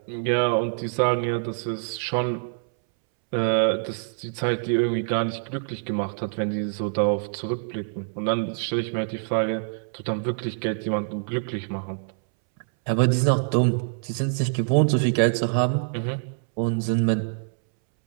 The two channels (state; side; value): silent; left; 62 dB below the other